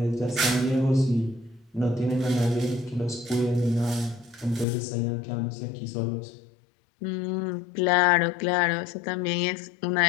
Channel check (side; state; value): right; drops out; at 4.7 s